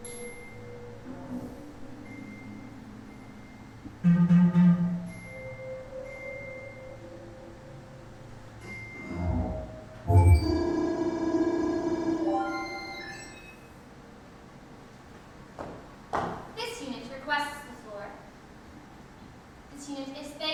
This unit requests the floor. This unit is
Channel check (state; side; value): identical; both; correlation 1.00